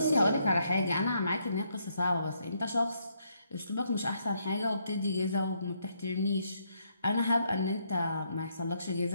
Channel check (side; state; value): both; inverted; correlation -0.74